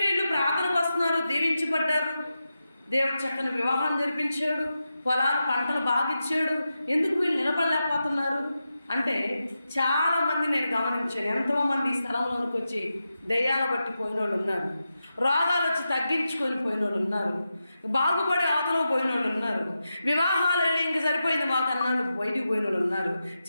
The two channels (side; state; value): both; inverted; correlation -0.90